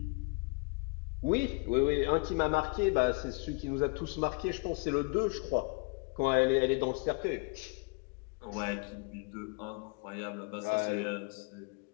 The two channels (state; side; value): quieter; right; 30.9 dB